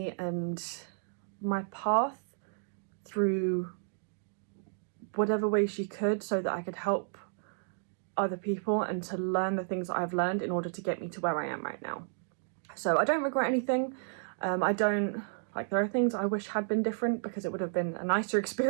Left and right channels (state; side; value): silent; left; digital silence